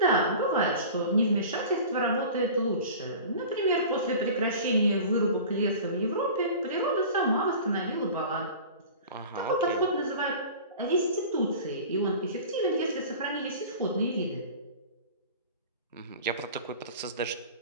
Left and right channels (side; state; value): both; inverted; correlation -0.38